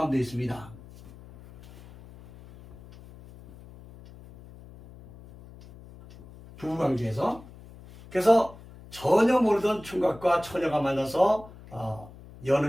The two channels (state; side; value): noise; left; hum, 20 dB below the sound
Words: 있습니다. 부부관계에서. 그래서 전혀 모르던 총각과 처녀가 만나서